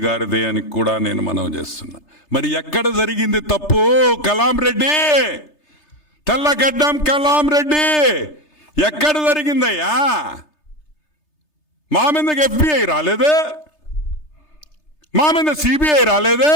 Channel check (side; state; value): right; late; 3.3 ms